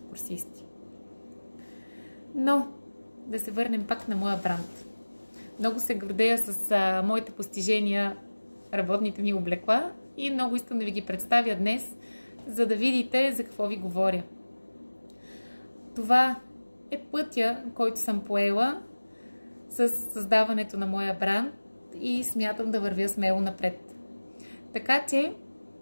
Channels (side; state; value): both; inverted; correlation -1.00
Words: курсисти. Но да се върнем пак на моя бранд. Много се гордея с моите постижения, работните ми облекла и много искам да ви ги представя днес, за да видите за какво ви говоря. Това е пътя, който съм поела с създаването на моя бранд и смятам да вървя смело напред. Така че